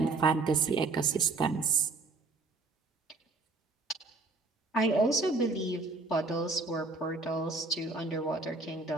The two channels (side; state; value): left; quieter; 3.5 dB